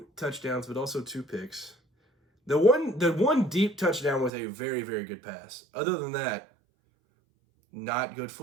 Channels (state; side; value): drops out; left; at 4.3 s